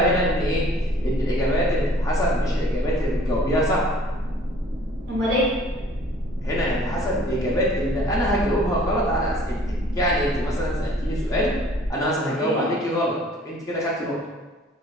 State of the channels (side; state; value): both; normal; correlation 0.53